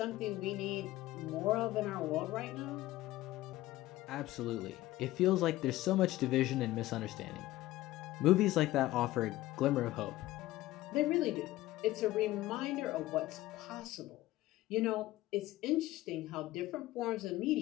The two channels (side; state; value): right; quieter; 16.5 dB